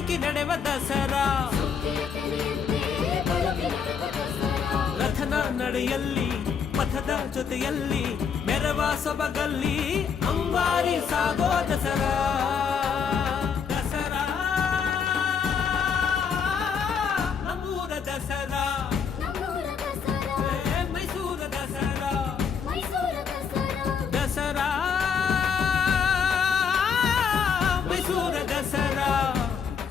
ನಡೆವ ದಸರಾ ರಥನ ನಡೆಯಲ್ಲಿ ಪಥದ ಜೊತೆಯಲ್ಲಿ ಮೆರವ ಸೊಬಗಲ್ಲಿ ಅಂಬಾರಿ ಸಾಗೋ ದಸರಾ ದಸರಾ ನಮ್ಮೂರ ದಸರಾ ಮೈಸೂರ ದಸರಾ ದಸರಾ ಮೈಸೂರ ದಸರಾ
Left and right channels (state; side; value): quieter; right; 6.6 dB